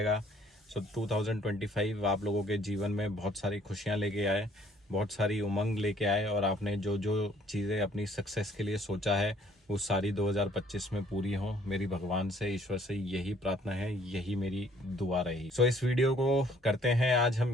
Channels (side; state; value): both; normal; correlation 0.61